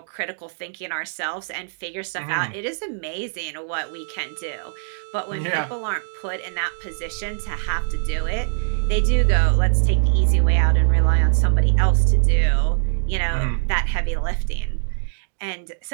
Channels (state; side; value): silent; left; digital silence